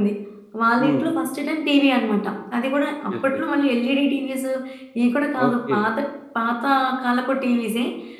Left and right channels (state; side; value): identical; both; correlation 1.00